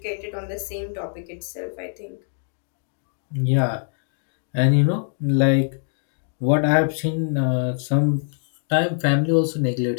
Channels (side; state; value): right; silent; digital silence